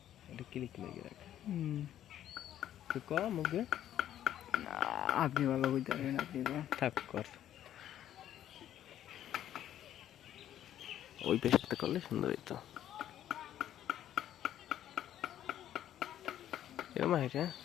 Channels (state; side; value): quieter; right; 11.4 dB